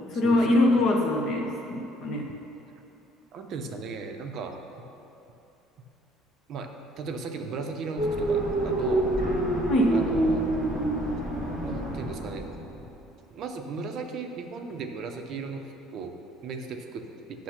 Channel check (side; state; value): both; normal; correlation 0.63